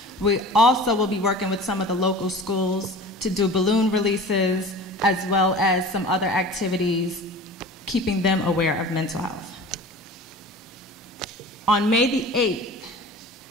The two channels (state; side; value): normal; both; correlation 0.39